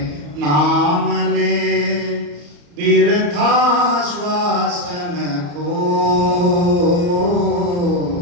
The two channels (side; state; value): left; late; 34 ms